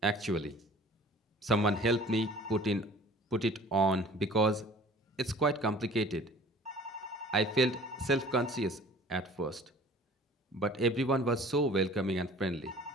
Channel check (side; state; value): both; normal; correlation 0.48